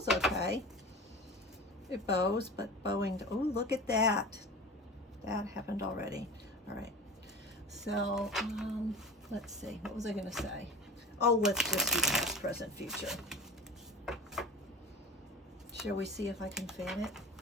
okay. It bows, but bowing, oh, look at that. That happened already. All right. So, let's see, what was I going to say? Oh, let's just do past, present, future. Shall we see if I can fan it?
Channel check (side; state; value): both; normal; correlation 0.34